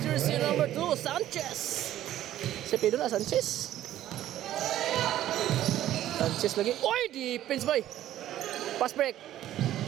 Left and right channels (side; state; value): left; quieter; 12.9 dB